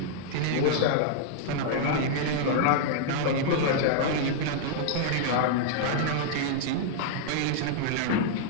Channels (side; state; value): both; different; correlation -0.01